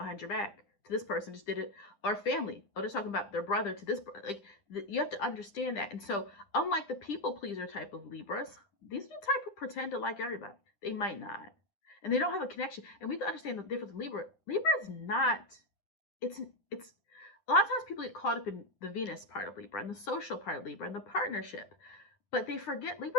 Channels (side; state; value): right; late; 10 ms